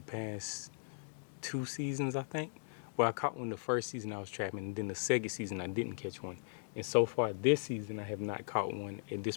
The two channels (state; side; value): silent; right; digital silence